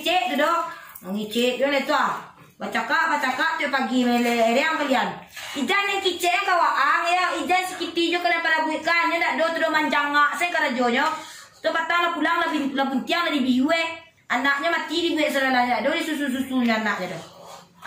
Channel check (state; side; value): identical; both; correlation 1.00